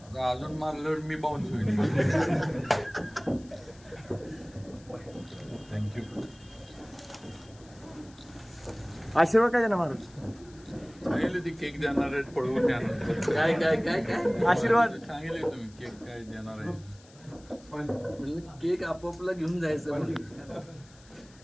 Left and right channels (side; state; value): left; noise; hiss, 26 dB below the sound